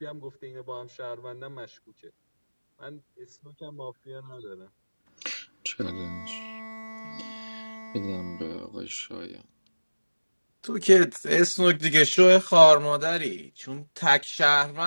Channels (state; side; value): inverted; both; correlation -1.00